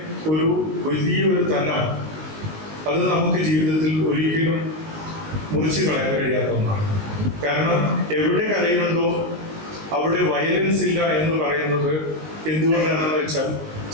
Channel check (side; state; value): left; late; 19 ms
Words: ഒരു വലിയൊരു തലം അത് നമുക്ക് ജീവിതത്തിൽ ഒരിക്കലും മുറിച്ച് കളയാൻ കഴിയാത്ത ഒന്നാണ്. കാരണം എവിടെ കലയുണ്ടോ അവിടെ വയലൻസ് ഇല്ല എന്ന് പറയുന്നത് എന്തുകൊണ്ടാണെന്ന് വെച്ചാൽ